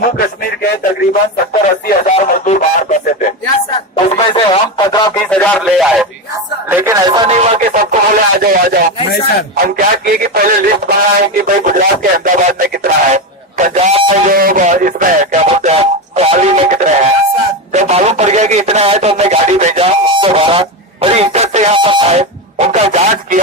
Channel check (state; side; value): normal; both; correlation 0.15